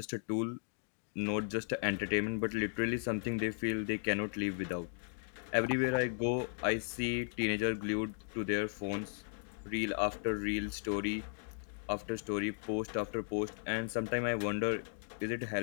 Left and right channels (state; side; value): silent; right; 54 dB below the other